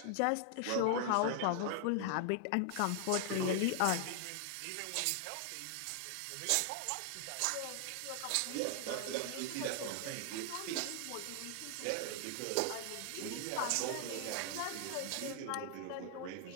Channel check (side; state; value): both; different; correlation 0.00